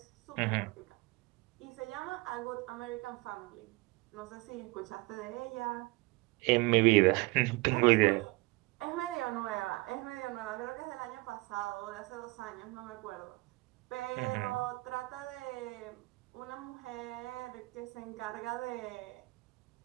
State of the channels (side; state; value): left; quieter; 23.5 dB